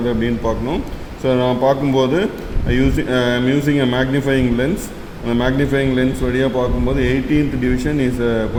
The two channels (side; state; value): both; identical; correlation 1.00